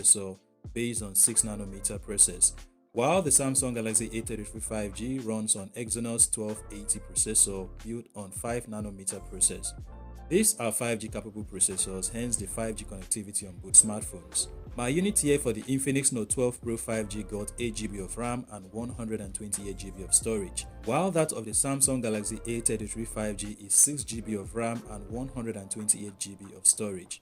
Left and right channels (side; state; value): both; identical; correlation 1.00